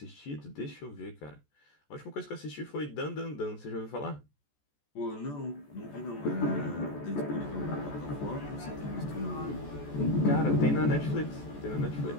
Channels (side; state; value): right; late; 14 ms